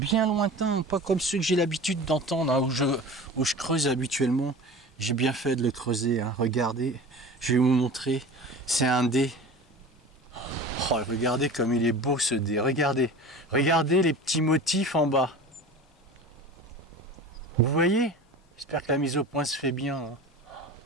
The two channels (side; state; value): both; normal; correlation 0.37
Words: lointain, pas comme ceux que j'ai l'habitude d'entendre, hein, où je creuse habituellement. J'ai bien fait de le creuser, hein. Regardez, je vais vous montrer, c'est un dé. Oh, regardez comme il est beau ce dé, regardez les petits motifs en bas. Vous voyez? J'espère que la mise au point se fait bien, hein.